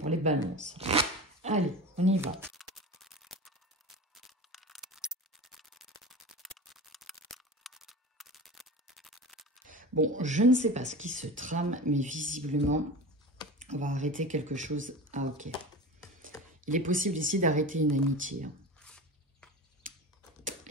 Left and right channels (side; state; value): both; normal; correlation 0.30